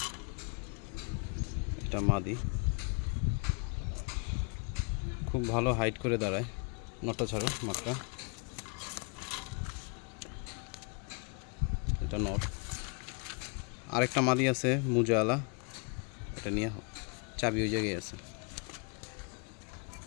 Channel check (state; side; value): quieter; right; 36.0 dB